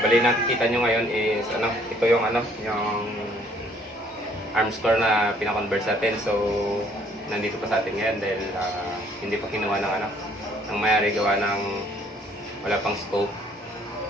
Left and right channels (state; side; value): normal; both; correlation 0.62